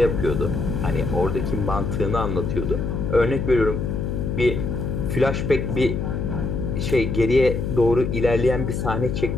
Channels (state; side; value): noise; left; hum, 2 dB below the sound